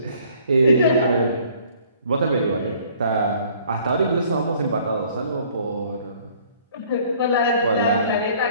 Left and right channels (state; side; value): inverted; both; correlation -0.57